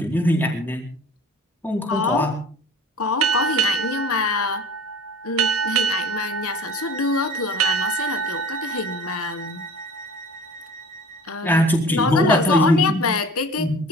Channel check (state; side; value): normal; both; correlation 0.42